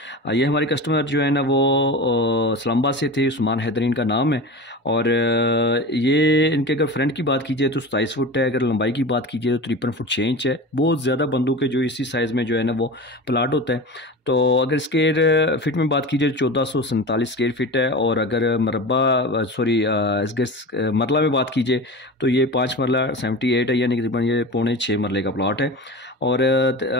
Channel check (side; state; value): both; normal; correlation 0.30